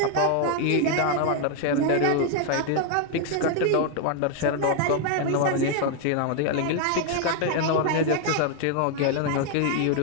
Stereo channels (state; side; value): different; both; correlation 0.00